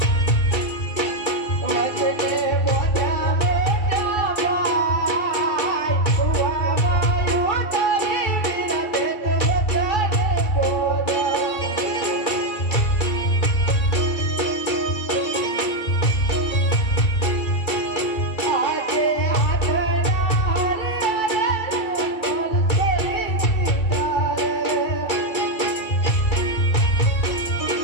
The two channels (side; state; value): right; late; 2.3 ms